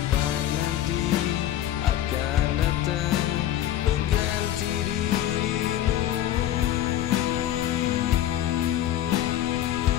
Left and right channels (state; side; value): quieter; right; 12.3 dB